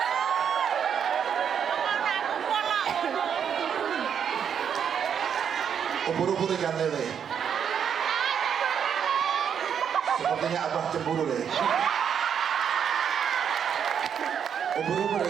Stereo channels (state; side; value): quieter; left; 7.9 dB